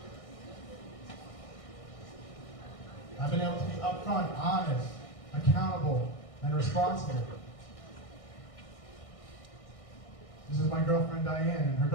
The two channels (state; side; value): late; right; 1.6 ms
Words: I've been able to be upfront, honest, accountable, and responsible. This is my girlfriend Diane and her